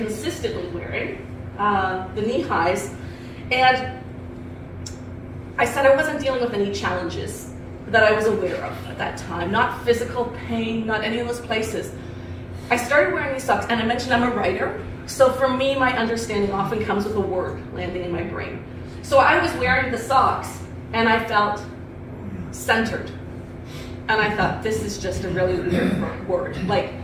wearing the knee highs, and I said I wasn't dealing with any challenges that I was aware of at that time, not physical pain, not any of those places. I started wearing these socks, and I mentioned I'm a writer, so for me, my understanding often comes with a word landing in my brain. So I was wearing the socks, and I felt centered. And I thought, this is just a really weird word. Like,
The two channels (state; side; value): identical; both; correlation 1.00